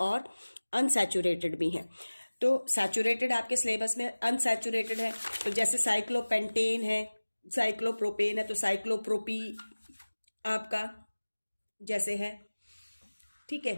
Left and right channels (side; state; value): both; inverted; correlation -1.00